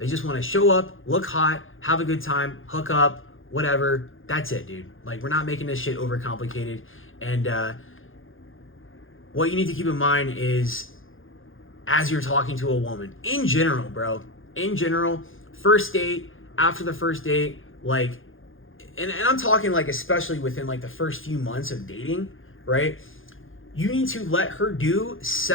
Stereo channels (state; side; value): late; right; 0.59 ms